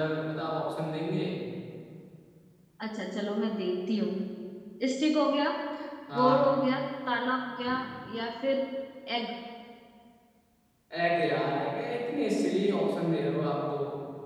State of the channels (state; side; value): identical; both; correlation 1.00